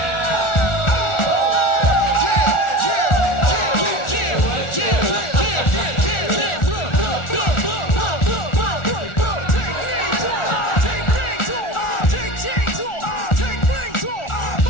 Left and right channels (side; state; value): right; late; 1.4 ms